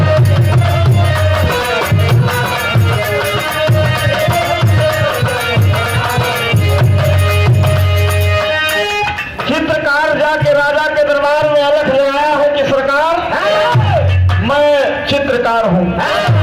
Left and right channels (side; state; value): both; identical; correlation 1.00